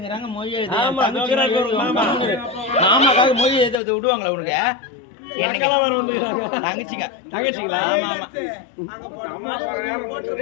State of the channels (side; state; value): right; drops out; at 3.8 s